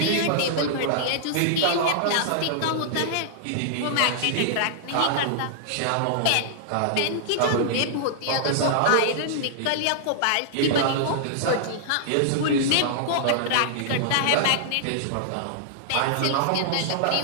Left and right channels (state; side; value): different; both; correlation -0.01